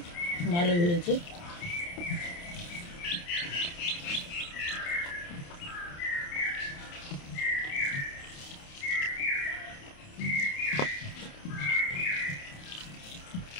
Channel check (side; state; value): right; late; 29 ms